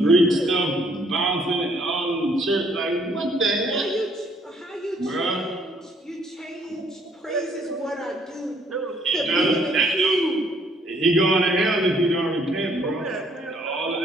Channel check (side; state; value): both; normal; correlation 0.66